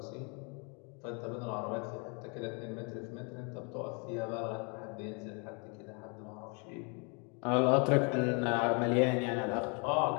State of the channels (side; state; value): right; quieter; 34.4 dB